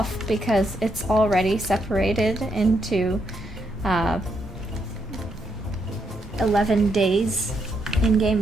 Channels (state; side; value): normal; both; correlation 0.78